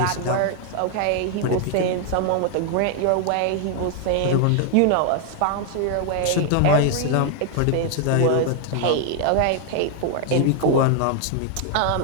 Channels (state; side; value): different; both; correlation 0.00